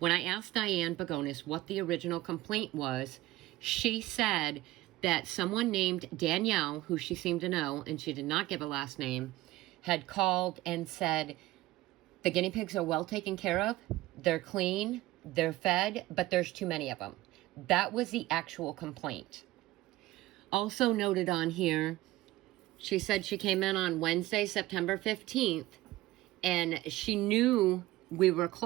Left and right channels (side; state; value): left; quieter; 17.4 dB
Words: I asked Diane Begonis what the original complaint was, she said that someone named Danielle, who she seemed to know, and she did not give a last name, had called and said, the guinea pigs are well taken care of, they're clean, they're fed, but there's too many of them. That was the actual complaint. Also noted on here, she said she came in on Wednesday, September 15th, and she knew we were